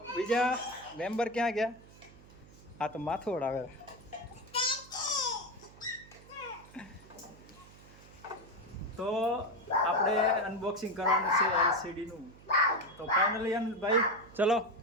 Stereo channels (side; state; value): right; noise; hum, 22 dB below the sound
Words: બીજા મેમ્બર ક્યાં ગયા? આ તો માથું ઓડાવે. તો આપણે અનબોક્સિંગ કરવાનું છે એલસીડીનું. તો ફાઇનલી ભાઈ ચલો